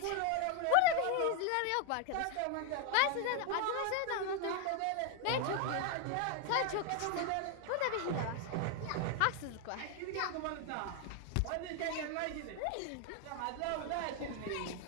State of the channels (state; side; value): different; both; correlation 0.00